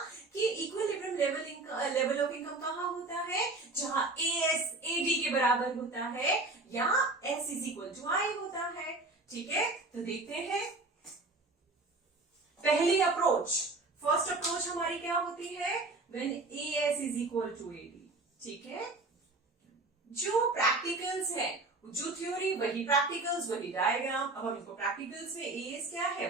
कि इक्विलिब्रियम लेवल ऑफ इनकम कहाँ होता है, जहां एस एडी के बराबर होता है या एस इज इक्वल टू आई होता है। ठीक है, तो देखते हैं पहली अप्रोच। फर्स्ट अप्रोच हमारी क्या होती है, when AS is equal to AD. ठीक है, जो प्रैक्टिकल्स है, जो थ्योरी वही प्रैक्टिकल्स वही डायग्राम। अब हम इसको प्रैक्टिकल्स में एएस क्या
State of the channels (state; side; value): quieter; left; 3.2 dB